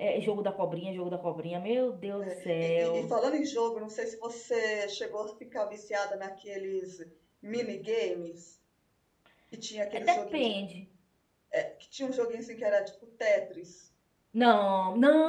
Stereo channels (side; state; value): both; identical; correlation 1.00